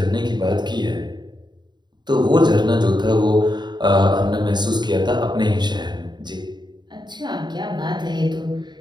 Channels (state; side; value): late; left; 0.21 ms